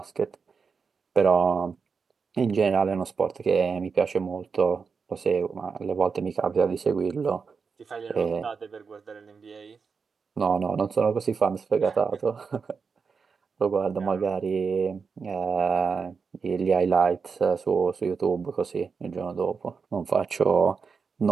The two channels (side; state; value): left; quieter; 5.4 dB